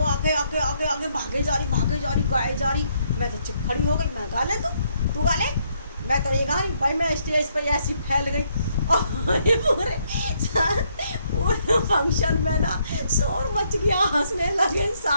आगे आगे आगे आगे भागे जा रही गाए जा रही। मैं तो चुप खड़ी हो गई, मैं गा ले तू गा ले, मैं तो नहीं गा रही। भाई मैं स्टेज पर ऐसी फैल गई और पूरे फंक्शन में ना शोर मच गया, हंसने लगे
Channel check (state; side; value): inverted; both; correlation -0.73